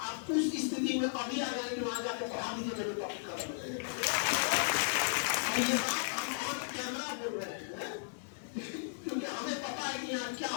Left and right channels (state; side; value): silent; right; digital silence